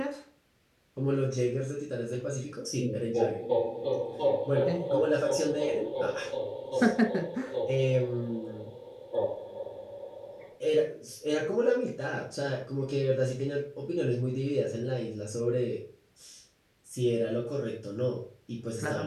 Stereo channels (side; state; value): both; identical; correlation 1.00